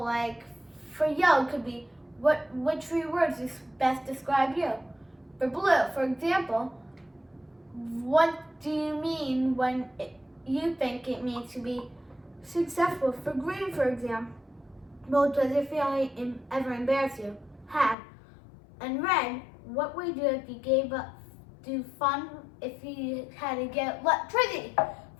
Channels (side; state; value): right; drops out; at 17.9 s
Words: like for yellow, it could be which 3 words best describe you. For blue, for example, what do you mean when you think it means to be successful? For green, for example, does it feel ever embarrass you? How? And red, what would you do if you gave up do fun if you had to get electricity